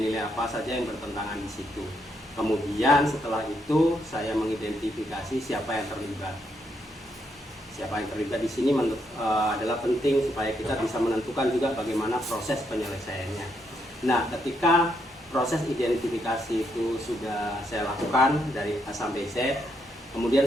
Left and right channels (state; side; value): normal; both; correlation 0.77